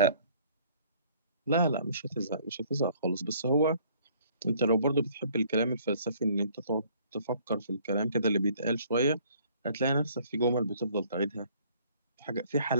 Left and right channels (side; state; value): both; inverted; correlation -0.59